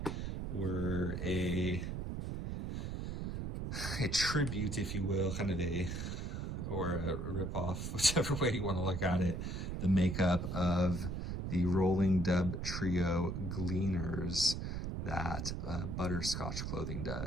were a tribute, if you will, kind of or a rip-off, whichever way you want to look at it, the makeup of the Rolling Dub Trio Gleaners that Butterscotch Clothing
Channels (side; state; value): right; noise; rumble, 3 dB below the sound